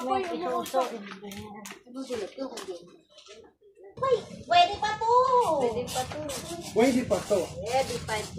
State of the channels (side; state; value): both; identical; correlation 1.00